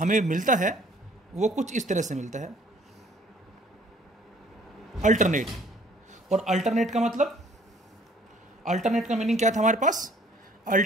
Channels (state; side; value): normal; both; correlation 0.58